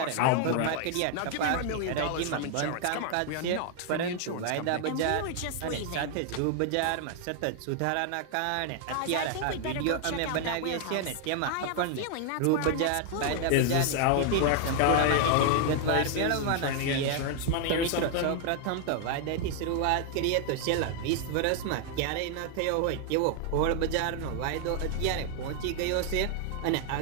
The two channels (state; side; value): different; both; correlation 0.00